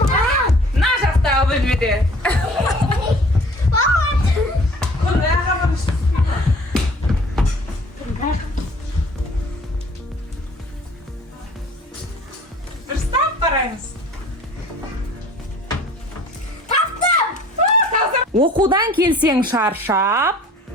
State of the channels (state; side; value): normal; both; correlation 0.50